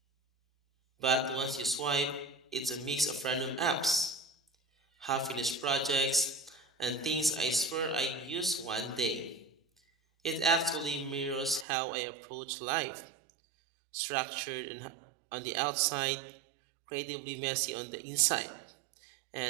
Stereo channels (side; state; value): left; drops out; at 11.7 s